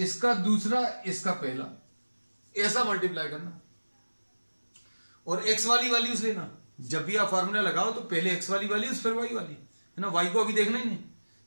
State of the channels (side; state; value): both; inverted; correlation -1.00